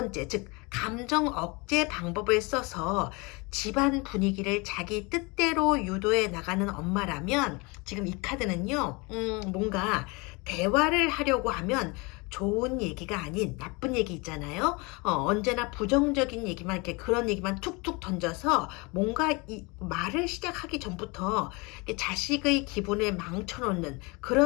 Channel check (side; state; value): right; quieter; 27.4 dB